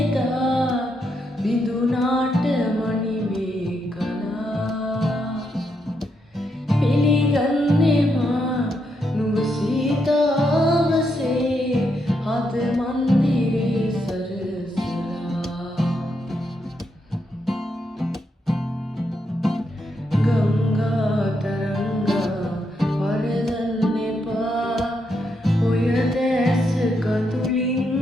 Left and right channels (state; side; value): normal; both; correlation 0.80